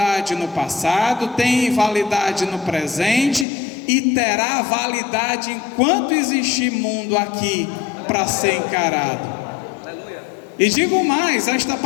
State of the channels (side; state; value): right; drops out; at 3.5 s